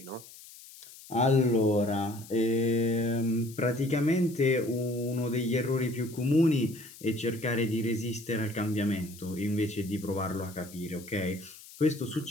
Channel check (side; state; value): left; noise; hiss, 19 dB below the sound